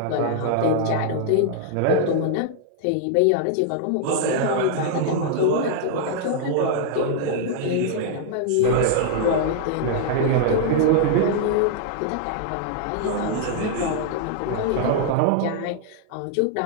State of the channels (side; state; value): both; different; correlation -0.01